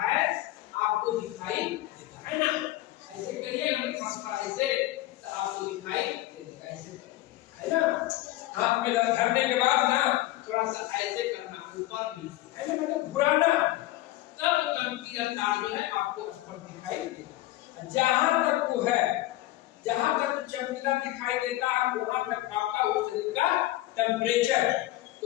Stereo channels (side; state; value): right; quieter; 16.6 dB